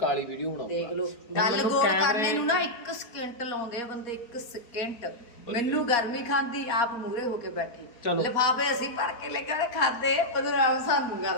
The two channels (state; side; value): late; right; 4.2 ms